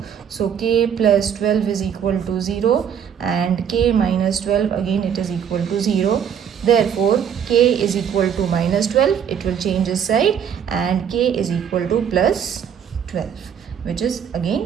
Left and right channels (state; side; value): quieter; left; 8.2 dB